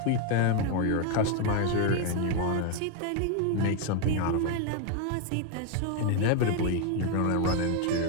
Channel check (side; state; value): both; different; correlation 0.01